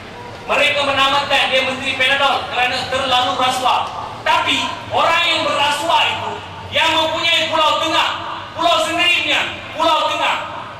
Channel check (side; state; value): both; identical; correlation 1.00